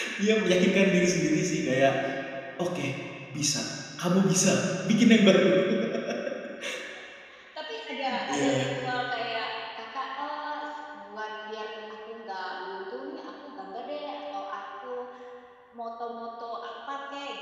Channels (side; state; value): both; identical; correlation 1.00